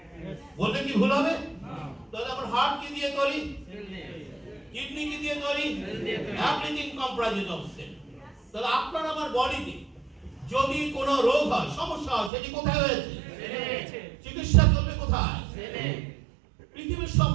বললে কি ভুল হবে? তাহলে আমার হার্ট কি দিয়ে তৈরি? কিডনি কি দিয়ে তৈরি? Everything comprises of cell. তাহলে আপনার আমার বডিতে যদি কোনো রোগ হয়, সমস্যা হয়, সেটি কোথায় হয়েছে? চিকিৎসা চলবে কোথায়? পৃথিবীর সব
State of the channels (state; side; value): drops out; left; at 12.3 s